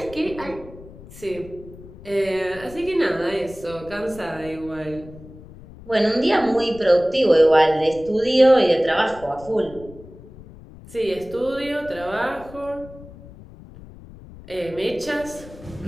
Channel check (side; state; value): left; noise; rumble, 18 dB below the sound